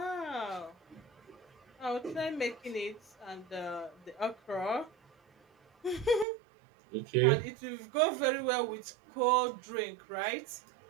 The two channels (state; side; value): drops out; left; at 6.2 s